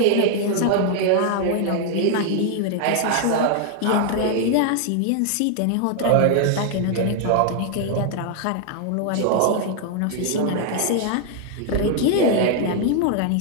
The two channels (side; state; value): both; different; correlation 0.00